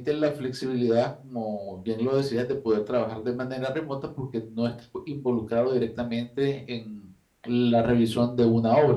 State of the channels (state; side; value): identical; both; correlation 1.00